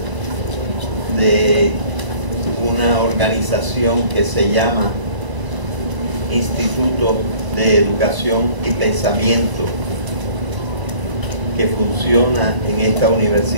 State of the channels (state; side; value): late; left; 1.0 ms